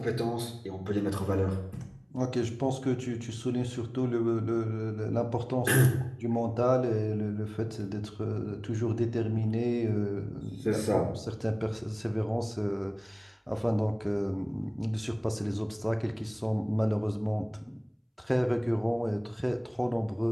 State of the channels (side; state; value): both; identical; correlation 1.00